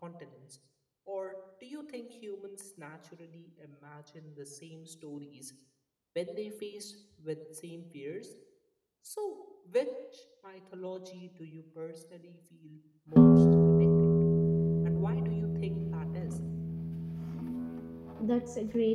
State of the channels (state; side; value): identical; both; correlation 1.00